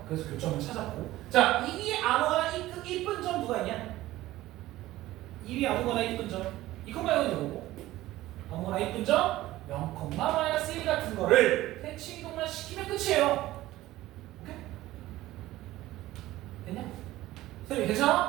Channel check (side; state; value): left; quieter; 16.3 dB